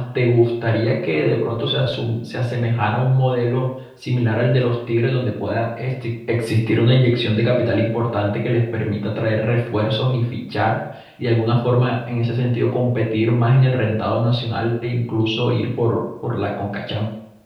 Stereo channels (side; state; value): both; identical; correlation 1.00